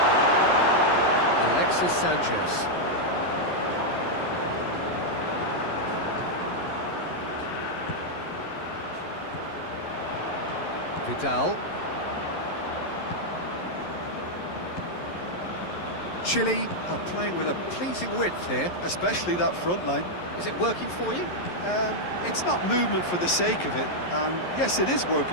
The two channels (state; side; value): late; right; 11 ms